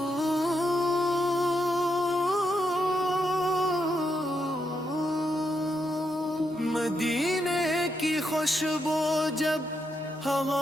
مدینے کی خوشبو جب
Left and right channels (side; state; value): both; normal; correlation 0.81